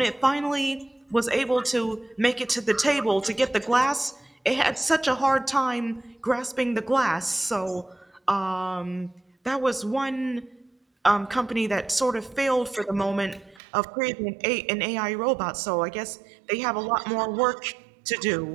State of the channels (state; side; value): drops out; left; at 13.6 s